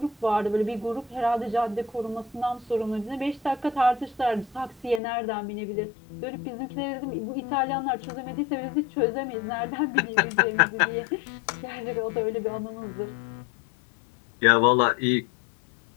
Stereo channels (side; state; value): right; drops out; at 5.0 s